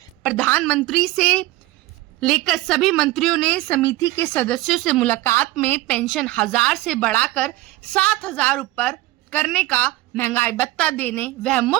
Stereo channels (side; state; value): left; quieter; 18.1 dB